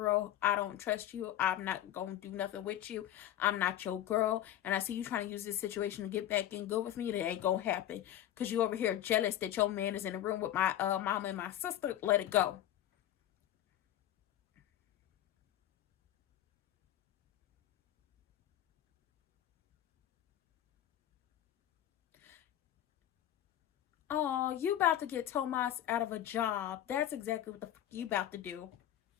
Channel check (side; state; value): right; quieter; 12.1 dB